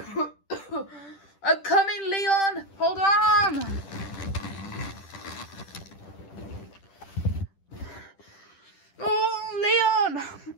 I'm coming, Leon! Hold on! Oh, Leon!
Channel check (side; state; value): right; late; 10 ms